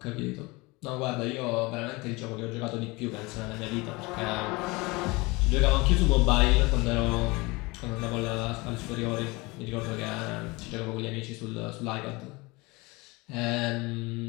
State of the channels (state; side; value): quieter; right; 24.3 dB